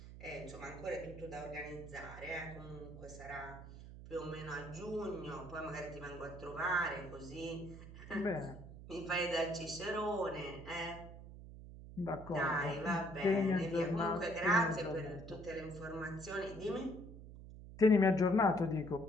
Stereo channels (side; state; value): right; noise; hum, 14 dB below the sound